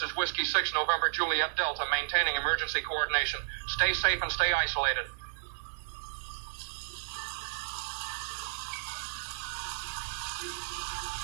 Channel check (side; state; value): left; silent; digital silence